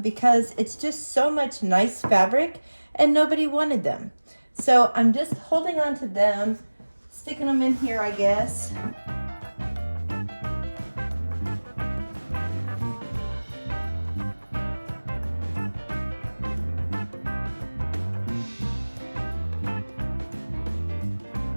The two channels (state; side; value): inverted; both; correlation -1.00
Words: because it's just so much nice fabric and nobody wanted them. So I'm just holding on to them, sticking them in here, I guess.